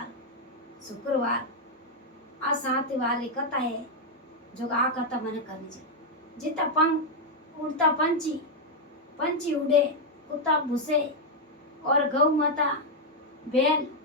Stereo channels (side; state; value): both; normal; correlation 0.00